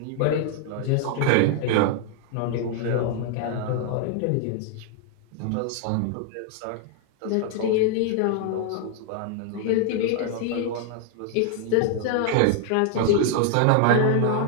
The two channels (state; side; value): different; both; correlation 0.00